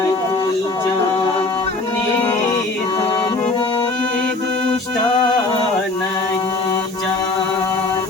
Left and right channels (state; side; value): quieter; right; 3.3 dB